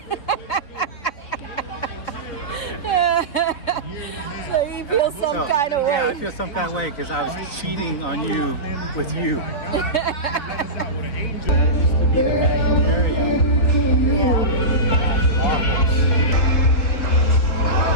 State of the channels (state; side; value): late; right; 4.0 ms